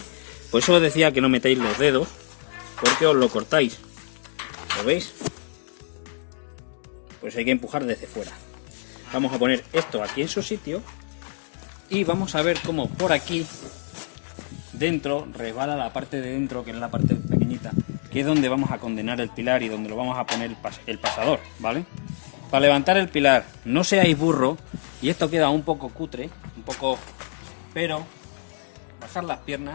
Por eso os decía que no metáis los dedos, porque os lo cortáis. ¿Lo veis? Pues hay que empujar desde fuera. Vamos a poner esto aquí en su sitio y vamos a ver cómo por aquí dentro resbala la parte de dentro, que es la parte pequeñita, que es donde vamos a condenar el pilar y donde lo vamos a poner el pasador, ¿vale? Para levantar el pilar, no seáis burro, y esto queda un poco cutre, pero bajar las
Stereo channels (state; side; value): silent; right; 62 dB below the other